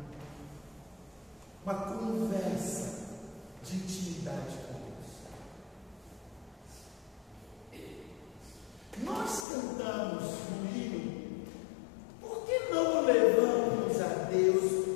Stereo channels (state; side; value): drops out; right; at 9.5 s